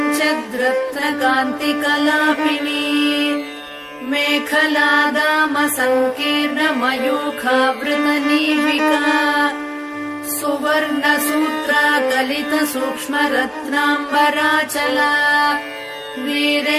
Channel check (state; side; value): identical; both; correlation 1.00